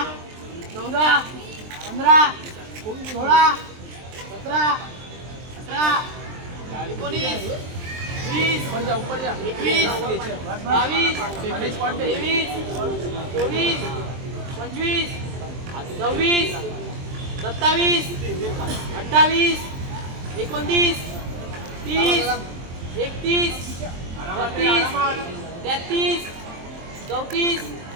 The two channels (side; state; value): left; late; 23 ms